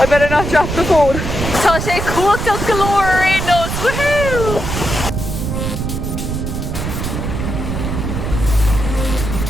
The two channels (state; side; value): noise; right; rumble, 3 dB below the sound